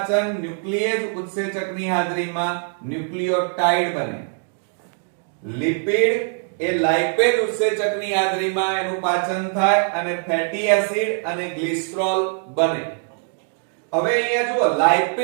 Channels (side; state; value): left; silent; 55 dB below the other